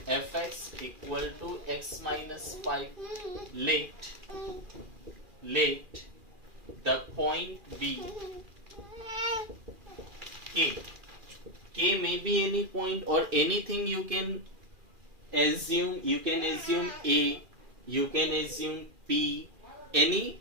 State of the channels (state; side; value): late; left; 2.4 ms